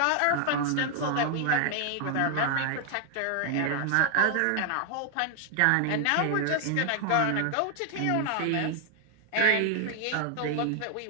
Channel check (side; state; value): both; different; correlation 0.00